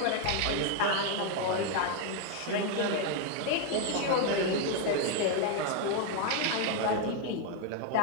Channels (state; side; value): different; both; correlation 0.01